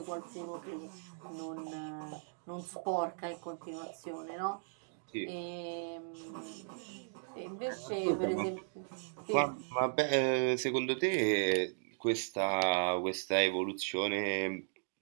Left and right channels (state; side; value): silent; left; digital silence